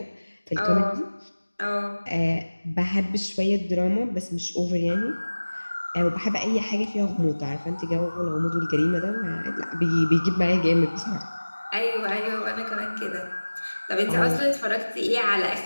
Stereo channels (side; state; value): both; inverted; correlation -1.00